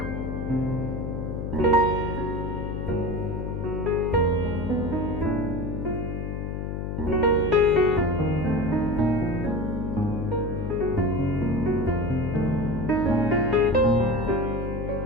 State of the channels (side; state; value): left; noise; hum, 4 dB below the sound